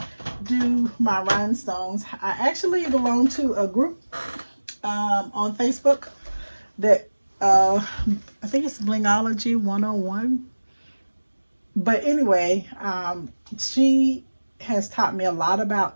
do my rhinestones, I actually belong to a group on Facebook that I think it's Blingology 101. But anyway, she has taught me a lot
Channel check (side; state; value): both; inverted; correlation -1.00